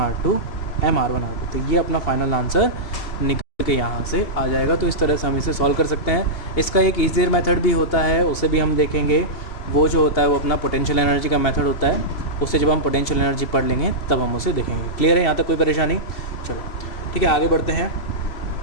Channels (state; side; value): late; right; 3.0 ms